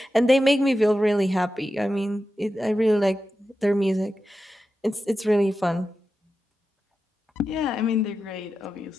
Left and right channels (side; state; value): both; normal; correlation 0.91